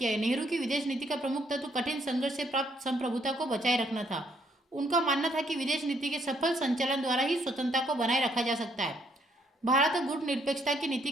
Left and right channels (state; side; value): normal; both; correlation 0.69